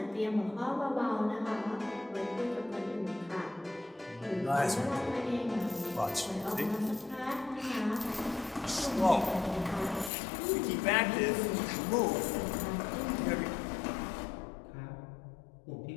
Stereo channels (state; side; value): drops out; right; at 10.1 s